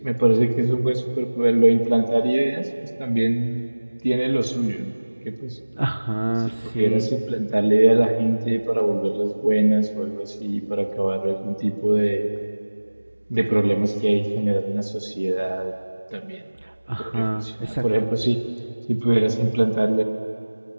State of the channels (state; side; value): inverted; both; correlation -1.00